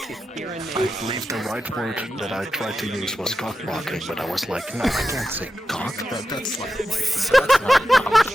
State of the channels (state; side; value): normal; both; correlation 0.90